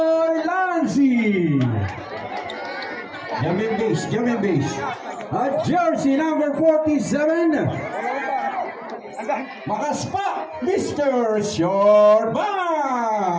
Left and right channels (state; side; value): identical; both; correlation 1.00